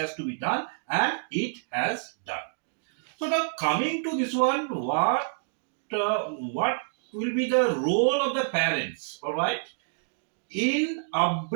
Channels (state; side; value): silent; left; digital silence